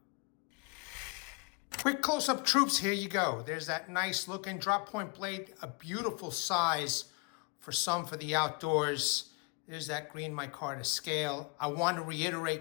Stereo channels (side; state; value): right; quieter; 32.7 dB